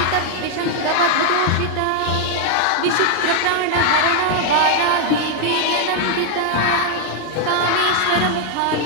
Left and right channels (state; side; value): different; both; correlation 0.00